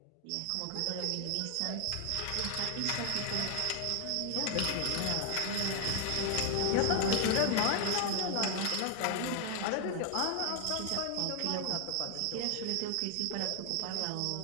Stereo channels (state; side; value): different; both; correlation 0.00